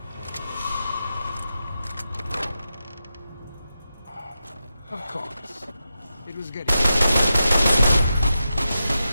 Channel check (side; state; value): both; inverted; correlation -0.89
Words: Of course. It was getting... To